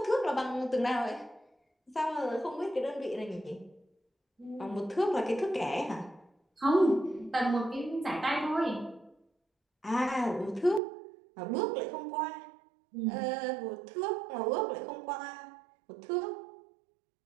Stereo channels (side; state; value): left; drops out; at 10.8 s